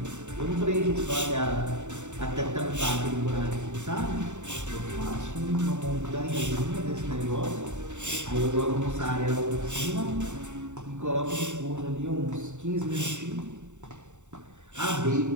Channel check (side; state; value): left; late; 0.84 ms